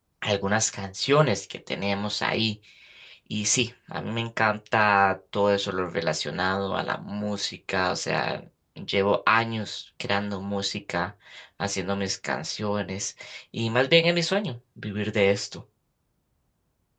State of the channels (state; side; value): identical; both; correlation 1.00